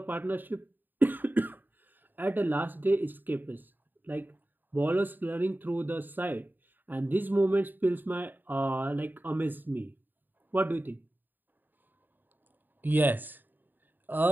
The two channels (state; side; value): late; left; 0.091 ms